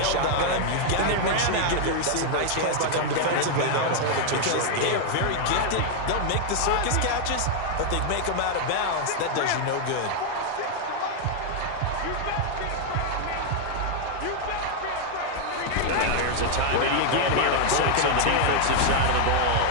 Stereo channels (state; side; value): different; both; correlation 0.00